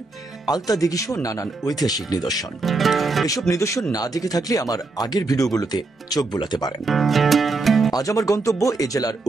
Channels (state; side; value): quieter; left; 3.5 dB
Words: আলতা দিঘি সহ নানান ঐতিহাসিক নিদর্শন। এসব নিদর্শন না দেখে থাকলে আমার আগের ভিডিওগুলোতে চোখ বোলাতে পারেন। আজ আমার গন্তব্য এ জেলার